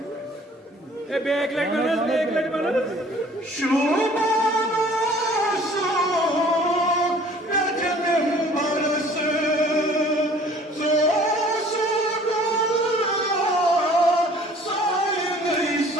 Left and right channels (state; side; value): normal; both; correlation 0.52